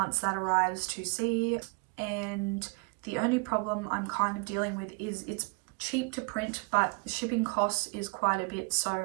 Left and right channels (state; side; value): quieter; left; 32.8 dB